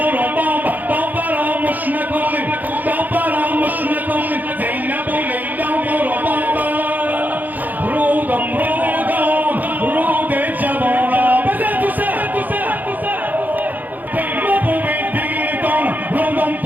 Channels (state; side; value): late; left; 0.083 ms